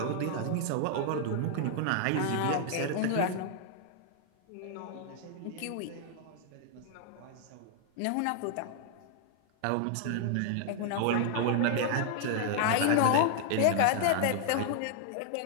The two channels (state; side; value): different; both; correlation 0.00